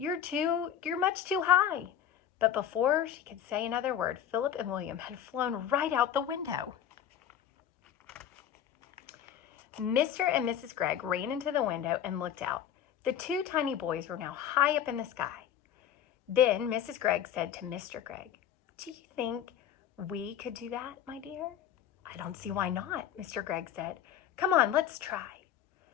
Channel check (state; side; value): quieter; right; 9.7 dB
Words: much too high." But before she could say another word, Philip and William had flown right out the window. Mr. and Mrs. Gregg ran into the window and looked out. The two tiny boys were now high up in the sky. Then Mrs. Gregg said to Mr. Gregg, "Do you think we could do that, my dear?" "I don't see why not," Mr. Gregg said. "Come on, let's try."